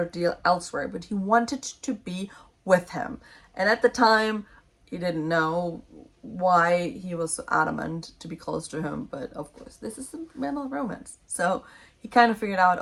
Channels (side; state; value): both; identical; correlation 1.00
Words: deal elsewhere, but he wanted to be with him. And at the time, he didn't know why he was so adamant to be close to him, but of course, this is a mental romance. So he kind of figured out,